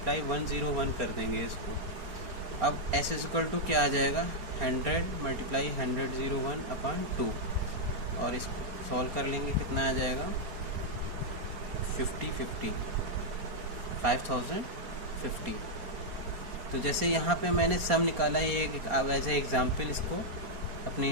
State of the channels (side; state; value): left; late; 4.6 ms